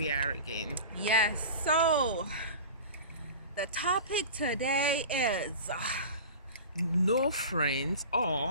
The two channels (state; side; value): inverted; both; correlation -0.35